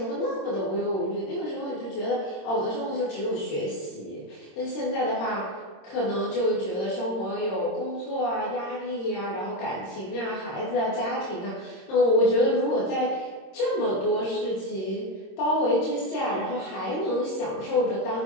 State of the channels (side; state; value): right; late; 26 ms